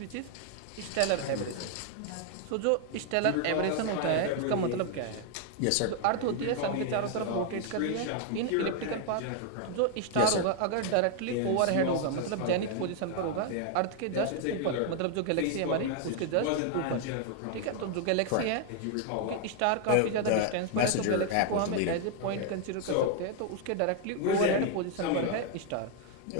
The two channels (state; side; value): different; both; correlation 0.00